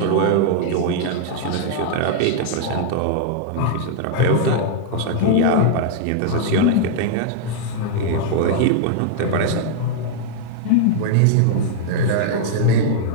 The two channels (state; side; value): different; both; correlation -0.01